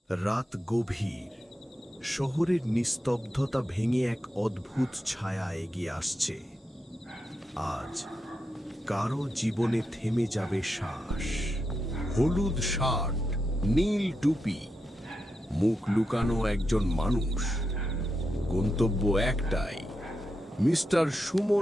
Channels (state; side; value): normal; both; correlation 0.86